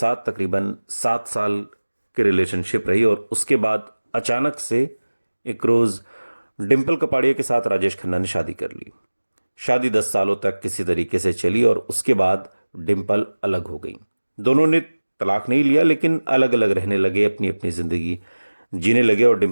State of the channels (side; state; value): both; inverted; correlation -1.00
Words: तकरीबन 7 साल की रिलेशनशिप रही। और उसके बाद अचानक से एक रोज़ डिम्पल कपाड़िया के साथ राजेश खन्ना ने शादी कर ली। शादी 10 सालों तक किसी तरीके से चली और उसके बाद डिम्पल अलग हो गई। दोनों ने तलाक नहीं लिया, लेकिन अलग अलग रहने लगे, अपनी अपनी ज़िंदगी जीने लगे और